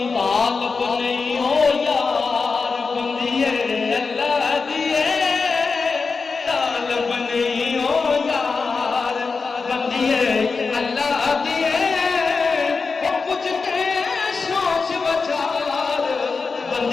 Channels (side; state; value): right; quieter; 4.6 dB